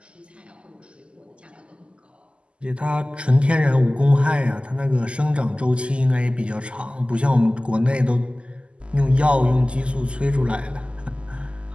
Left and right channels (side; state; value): left; late; 0.053 ms